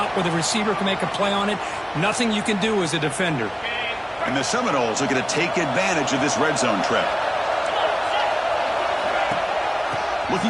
where the receiver can make a play on it. Nothing you can do as a defender. And the Seminoles are going to take advantage of this red zone trip.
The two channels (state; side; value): identical; both; correlation 1.00